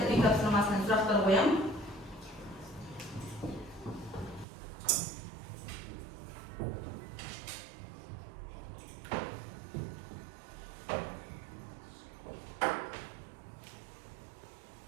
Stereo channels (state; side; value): drops out; left; at 4.5 s